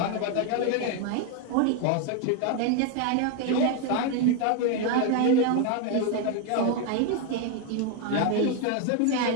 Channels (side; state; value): both; different; correlation 0.01